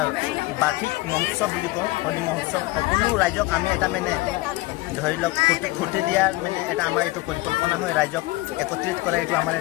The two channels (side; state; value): right; quieter; 20.5 dB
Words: বাৰ্ষিক মহোৎসৱ বুলি কওঁ, হোলী মহোৎসৱ। সকলো ৰাইজক আমি এটা মানে ধৰি লওক ফূৰ্তি দিয়াৰ মানে এটা আমাৰ এইটো পৰিকল্পনা হয়, ৰাইজক একত্ৰিত কৰা এইটো আমাৰ